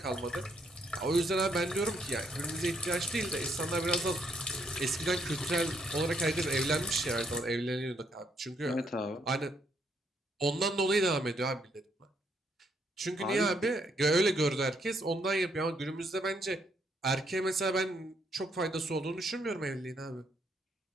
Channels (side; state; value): both; normal; correlation 0.73